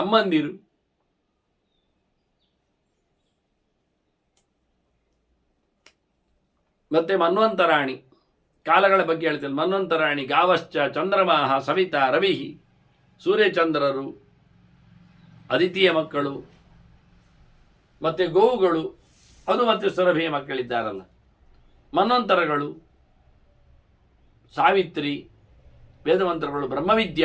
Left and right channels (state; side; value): identical; both; correlation 1.00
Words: ಅಮ್ಮಂದಿರು, ಮತ್ತೆ ಮನ್ವಂತರಾಣಿ, ಕಾಲಗಳ ಬಗ್ಗೆ ಹೇಳ್ತೇನೆ. ಮನ್ವಂತರಾಣಿ ಗಾವಶ್ಚ ಚಂದ್ರಮಾಹ ಸವಿತಾ ರವಿ, ಸೂರ್ಯಚಂದ್ರರು, ಅದಿತಿಯ ಮಕ್ಕಳು, ಮತ್ತೆ ಗೋವುಗಳು, ಅದು ಮತ್ತೆ ಸುರಭಿಯ ಮಕ್ಕಳಿದ್ದಾರಲ್ಲ, ಮನ್ವಂತರಗಳು, ಸಾವಿತ್ರಿ, ವೇದಮಂತ್ರಗಳು,